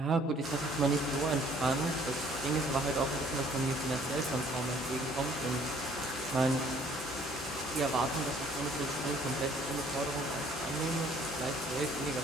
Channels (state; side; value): normal; both; correlation 0.59